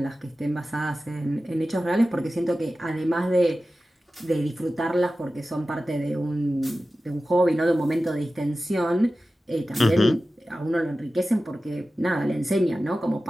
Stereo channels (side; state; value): both; normal; correlation 0.95